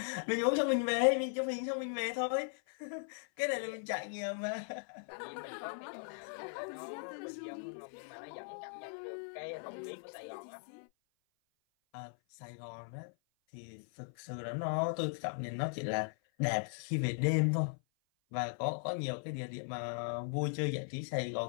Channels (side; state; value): right; silent; 52 dB below the other